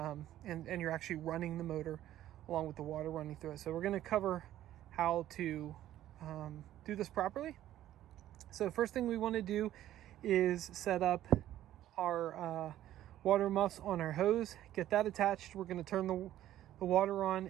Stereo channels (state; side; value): quieter; left; 13.0 dB